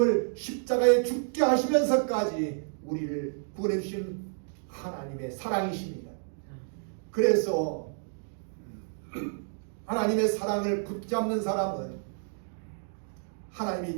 십자가에 죽게 하시면서까지 우리를 구원해 주신 하나님의 사랑이십니다. 그래서 하나님의 사랑을 붙잡는 사람은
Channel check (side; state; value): left; silent; 58 dB below the other